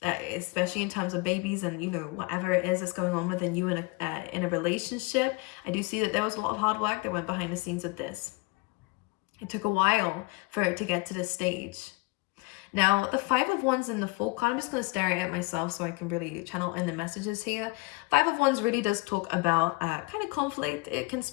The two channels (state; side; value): quieter; right; 25.3 dB